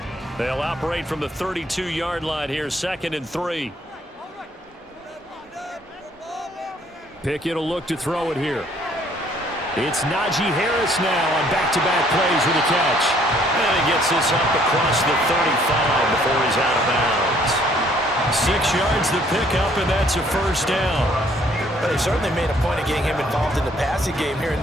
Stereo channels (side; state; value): both; normal; correlation 0.62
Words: They'll operate from the 32-yard line here, 2nd and 3. Pickett will look to throw it here. It's Najee Harris now on back-to-back plays with a catch. And he gets this up across the 35 before he's out of bounds. 6 yards to pick up, and that's a first down. But they certainly made a point of getting him involved in the passing game here in